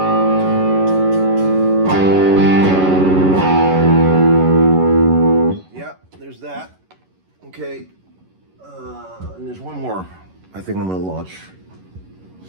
There's that. Okay. And there's one more I think I'm going to launch.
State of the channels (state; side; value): late; left; 11 ms